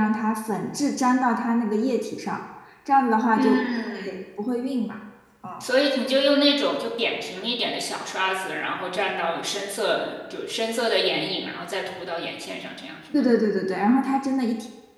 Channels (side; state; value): both; identical; correlation 1.00